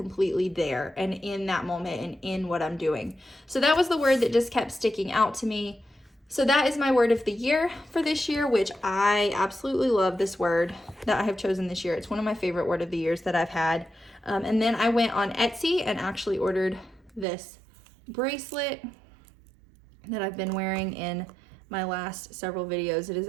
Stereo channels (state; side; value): drops out; left; at 17.2 s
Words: there and in that moment and in what I'm doing. So that was the word that just kept sticking out to me. So that is my word of the year for this year, which I absolutely love this word that I have chosen this year. It's one of my favorite word of the years that I've had. And then I went on Etsy and actually ordered this bracelet that I've been wearing in my last several videos. It is